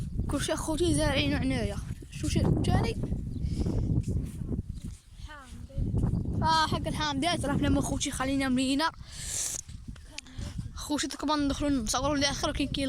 كلشي اخوتي زارعينو عنايا. شوف تاني حق الحامضات راه حنا خوتي خلينا ملينا خوتي كما ندخلو نصورو للاخر كاين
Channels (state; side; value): identical; both; correlation 1.00